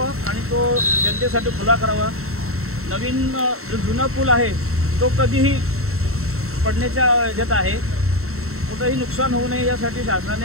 आणि तो जनतेसाठी खुला करावा. नवीन जो जुना पूल आहे तो कधीही पडण्याच्या ह्याच्यात आहे. कुठंही नुकसान होऊ नये यासाठी शासनाने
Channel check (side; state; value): left; late; 0.63 ms